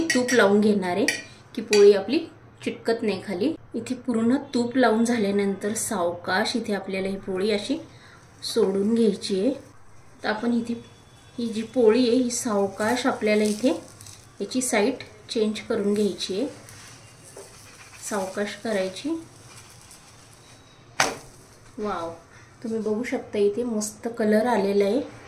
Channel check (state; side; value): identical; both; correlation 1.00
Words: तूप लावून घेणार आहे की पोळी आपली चिटकत नाही खाली। इथे पूर्ण तूप लावून झाल्यानंतर सावकाश इथे आपल्याला ही पोळी अशी सोडून घ्यायची आहे। तर आपण इथे ही जी पोळी आहे ही सावकाश आपल्याला इथे याची साईड चेंज करून घ्यायची आहे, सावकाश करायची। वाव, तुम्ही बघू शकता इथे मस्त कलर आलेला आहे।